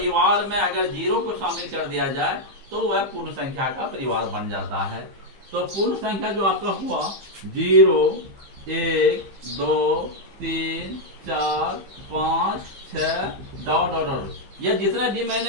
में अगर 0 को शामिल कर दिया जाए तो वह पूर्ण संख्या का परिवार बन जाता है। तो पूर्ण संख्या जो आपका हुआ 0, 1, 2, 3, 4, 5, 6 ... यह जितना भी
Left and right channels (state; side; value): late; left; 15 ms